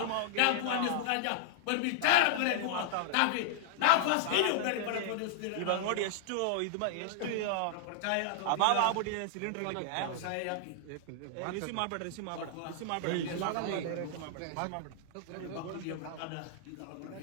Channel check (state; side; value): different; both; correlation -0.01